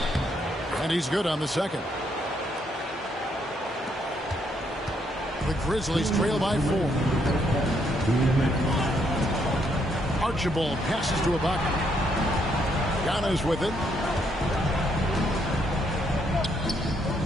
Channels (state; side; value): normal; both; correlation 0.73